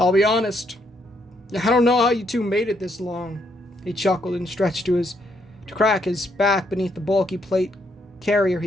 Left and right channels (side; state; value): both; normal; correlation 0.74